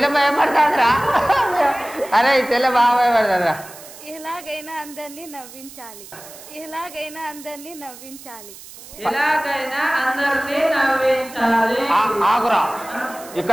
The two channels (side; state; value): right; noise; hiss, 17 dB below the sound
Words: భయపడతాదిరా. అరే చెల్లె బాగా భయపడతాదిరా. ఎలాగైనా అందరినీ నవ్వించాలి, ఎలాగైనా అందరినీ నవ్వించాలి, ఎలాగైనా అందరినీ నవ్వించాలి. ఆగురా,